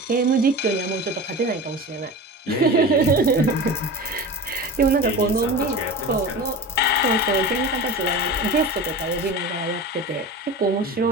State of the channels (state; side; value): normal; both; correlation 0.32